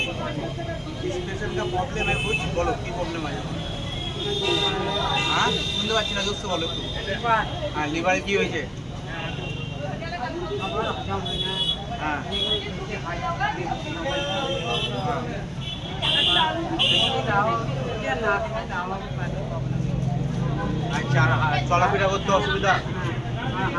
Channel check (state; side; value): identical; both; correlation 1.00